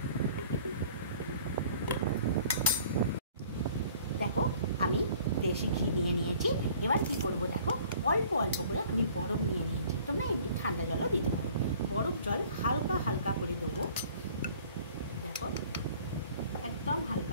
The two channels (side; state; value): both; inverted; correlation -0.52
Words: দেখো, আমি দেশি ঘি নিয়ে নিয়েছি। এবার কি করব, দেখো অল্প অল্প করে আমি বরফ নিয়ে নিয়েছি। তোমরা এমনি ঠান্ডা জলও দিতে পারো। বরফ জল হালকা হালকা করে দেবো। দেখো, একদম